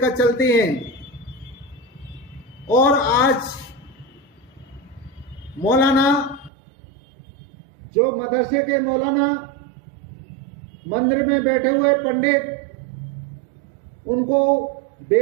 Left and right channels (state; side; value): drops out; left; at 6.5 s